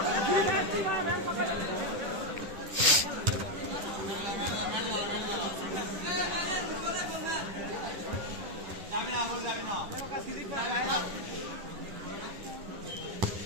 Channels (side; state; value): left; late; 10 ms